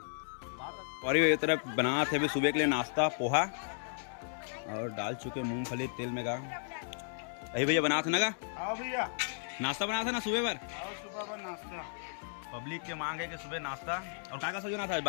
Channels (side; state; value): right; silent; digital silence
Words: और ये तरफ बना थे अभी सुबह के लिए नाश्ता पोहा और डाल चुके मूंगफली तेल में का। अभी भैया बना था ना का भैया नाश्ता बना था ना सुबह पर नाश्ता। पब्लिक के मांग है कि सुबह नाश्ता। और का सब्जी बना था?